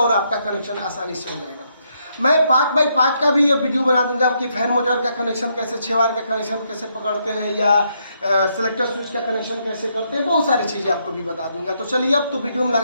आपका कनेक्शन आसानी से हो जाएगा। मैं 5x5 का भी ये वीडियो बना दूंगा कि फैन मोटर का कनेक्शन कैसे, 6 वायर का कनेक्शन कैसे पकड़ते हैं, या सेलेक्टर स्विच का कनेक्शन कैसे करते हैं, बहुत सारी चीज़ें आपको भी बता दूंगा। तो चलिए अब तो वीडियो में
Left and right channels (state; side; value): inverted; both; correlation -0.76